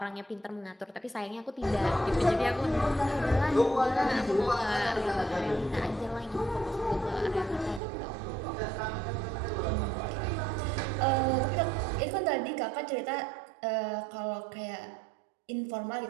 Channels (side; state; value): left; drops out; at 7.8 s